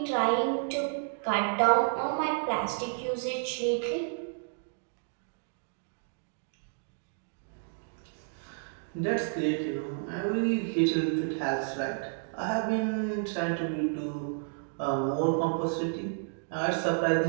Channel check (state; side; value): silent; left; digital silence